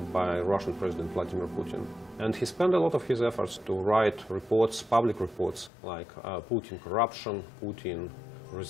by Russian President Vladimir Putin. And he spent a lot of his efforts to write reports, public reports, like Putin corruption, Putin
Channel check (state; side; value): drops out; right; at 5.7 s